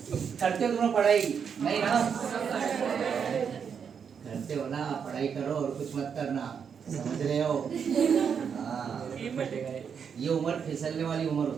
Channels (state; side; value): quieter; left; 7.0 dB